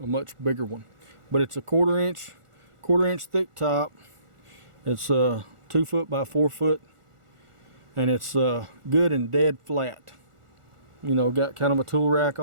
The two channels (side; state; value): left; late; 1.4 ms